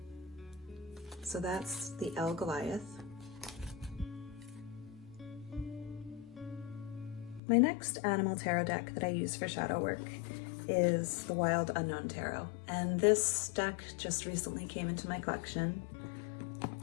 So that's the Goliath. My next animal tarot deck that I use for shadow work is the Wild Unknown Tarot. And this deck just recently came into my collection,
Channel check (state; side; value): drops out; right; at 7.4 s